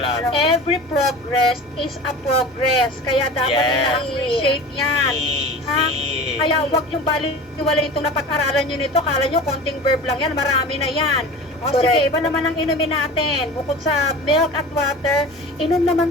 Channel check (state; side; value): normal; both; correlation 0.35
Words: Every progress is a progress. Kaya dapat Yes. ina-appreciate yan. Ha? Kaya huwag yung baliwala itong napag-aralan nyo nito. Kala nyo konting verb lang yan. Marami na yan. O sige, iba naman ang inumin natin. Bukod sa milk at water, inom